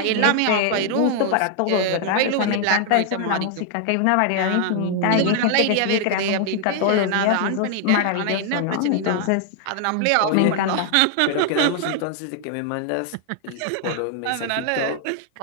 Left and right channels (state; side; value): different; both; correlation 0.00